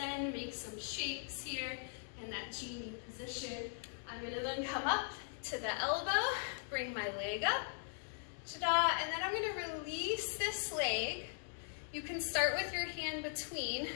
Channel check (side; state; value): right; silent; 51 dB below the other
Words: make some shapes here in that Genie position. I'm going to then come up to the elbow, bring my leg up, ta-da, and then I'm going to release this leg. You can start with your hand between,